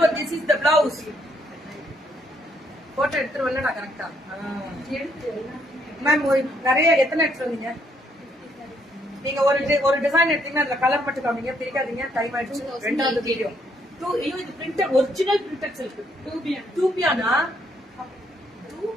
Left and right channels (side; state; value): both; normal; correlation 0.71